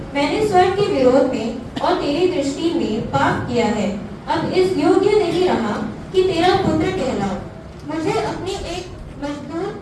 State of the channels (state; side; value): identical; both; correlation 1.00